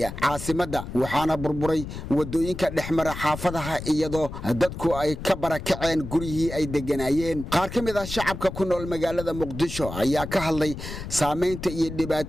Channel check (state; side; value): noise; left; rumble, 9 dB below the sound